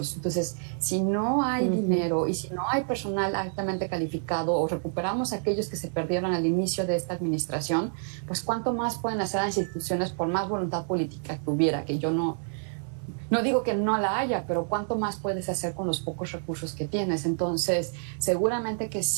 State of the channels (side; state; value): left; silent; 59 dB below the other